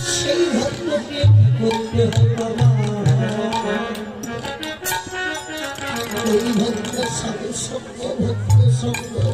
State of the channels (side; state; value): both; identical; correlation 1.00